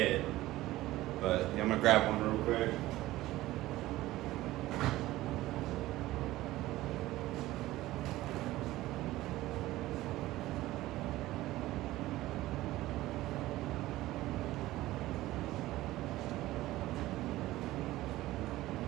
But yeah, I'm gonna grab one real quick.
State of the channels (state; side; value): quieter; left; 16.7 dB